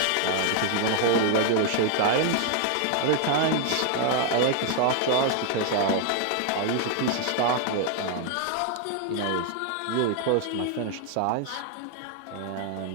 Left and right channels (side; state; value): both; different; correlation 0.00